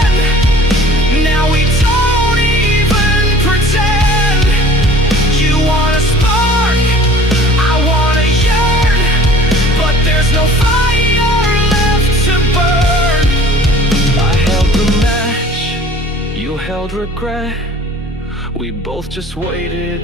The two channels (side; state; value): both; normal; correlation 0.49